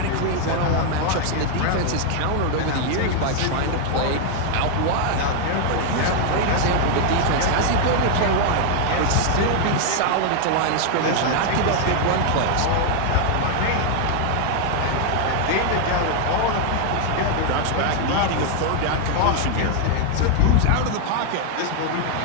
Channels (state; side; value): different; both; correlation 0.00